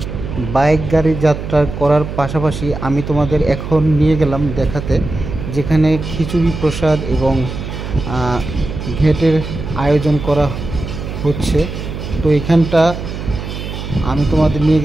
বাইক গাড়ি যাত্রা করার পাশাপাশি আমি তোমাদের এখন নিয়ে গেলাম দেখাতে যেখানে খিচুড়ি প্রসাদ এবং ঘেটের আয়োজন করা হচ্ছে। তো এখানটা আমি তোমাদের নিয়ে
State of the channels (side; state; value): right; noise; hum, 7 dB below the sound